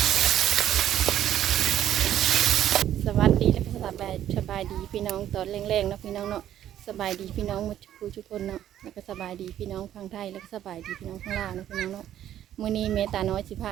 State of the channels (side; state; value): left; quieter; 11.4 dB